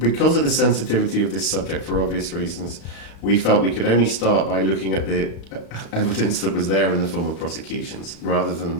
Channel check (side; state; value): right; late; 35 ms